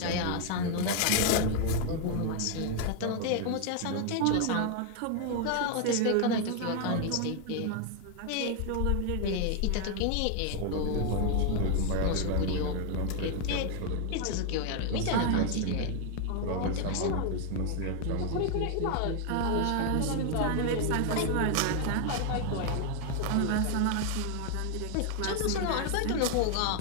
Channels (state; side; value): different; both; correlation 0.01